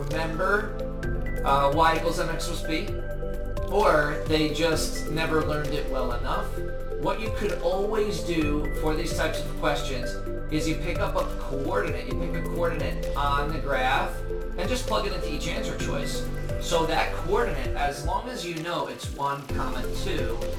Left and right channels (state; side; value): identical; both; correlation 1.00